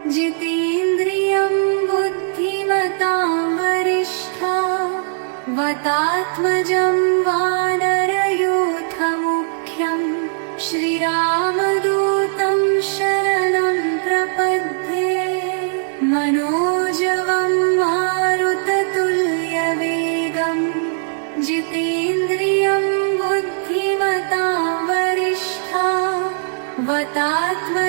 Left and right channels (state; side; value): silent; left; 58 dB below the other